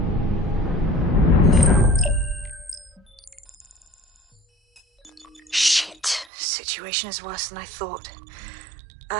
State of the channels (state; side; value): drops out; left; at 6.3 s